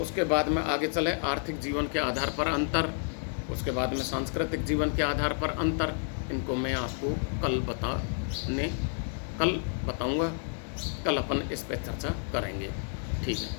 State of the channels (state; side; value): silent; right; 58 dB below the other